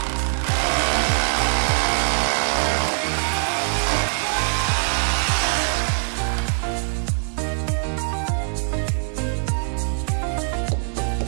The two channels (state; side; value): silent; left; digital silence